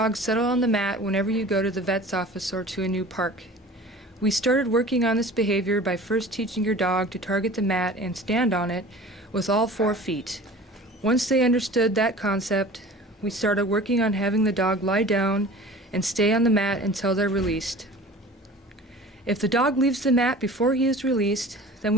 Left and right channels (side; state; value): both; normal; correlation 0.41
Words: settle on the mat whenever you go to the vet's office or to a new park. We started working on this behavior by first teaching your dog to target the mat and stand on it with all 4 feet. Once they understood that concept, we started working on having the dog lie down and stay on the mat until they're released. If the dog leaves the mat before he is released, then